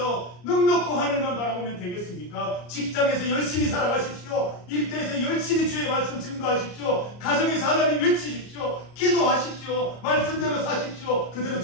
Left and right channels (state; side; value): late; right; 34 ms